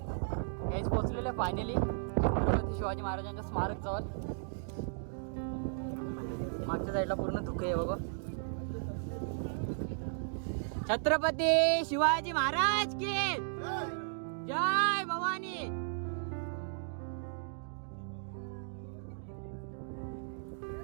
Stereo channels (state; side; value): silent; left; digital silence